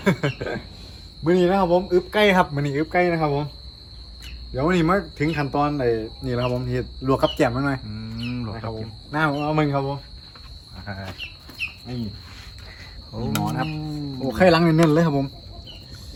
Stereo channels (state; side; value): identical; both; correlation 1.00